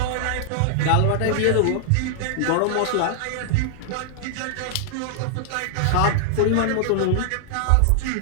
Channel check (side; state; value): both; different; correlation -0.01